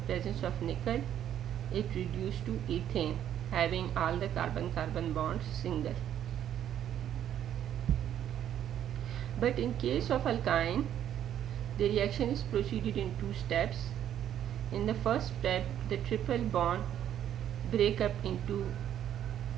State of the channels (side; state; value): left; quieter; 10.5 dB